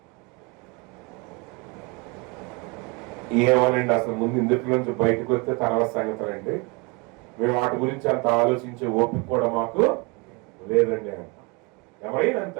ఏమనండి, అసలు ముందు ఇందులో నుంచి బయటకు వస్తే తర్వాత సంగతులండి, మేము వాటి గురించి అంత ఆలోచించే ఓపిక కూడా మాకు లేదండి అంట. ఎవరైనా అంతే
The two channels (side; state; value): left; quieter; 28.5 dB